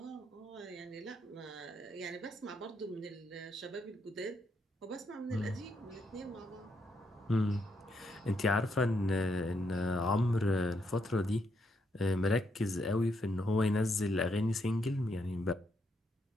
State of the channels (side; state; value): both; normal; correlation 0.77